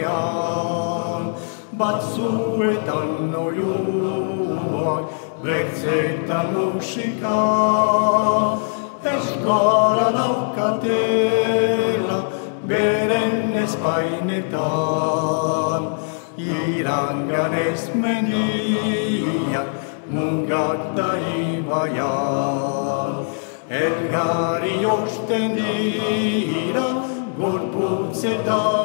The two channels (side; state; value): right; silent; digital silence